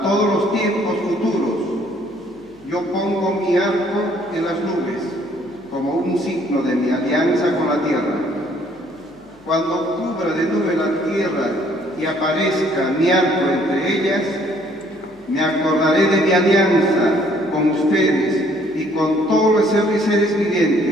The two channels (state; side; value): noise; left; hum, 30 dB below the sound